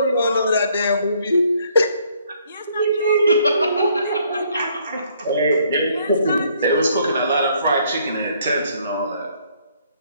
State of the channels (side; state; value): both; inverted; correlation -0.66